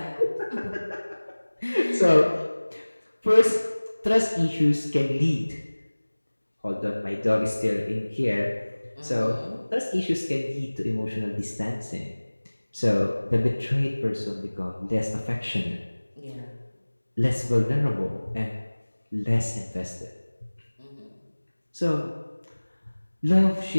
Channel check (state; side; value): inverted; both; correlation -1.00